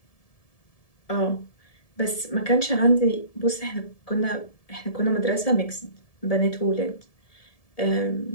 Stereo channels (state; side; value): late; right; 1.7 ms